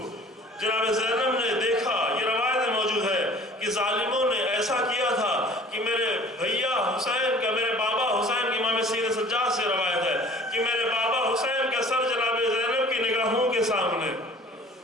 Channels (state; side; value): normal; both; correlation 0.49